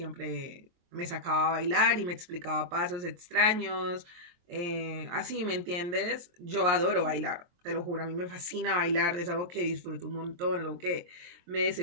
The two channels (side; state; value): left; late; 23 ms